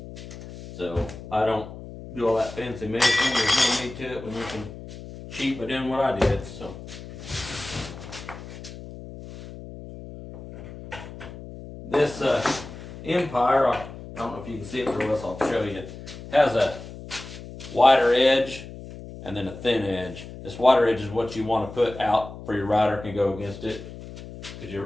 So I don't do all that fancy measuring. There's no need to it when you can cheat by doing what I did. So this Empire, I don't know if you can see it real well, so I'll show you, has a wider edge and then a thin edge. This wider edge is what you want to put out for your router can go against it. Because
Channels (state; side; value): noise; left; hum, 13 dB below the sound